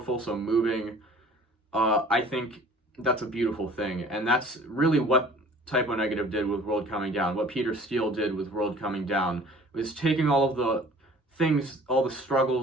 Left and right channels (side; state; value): both; normal; correlation 0.49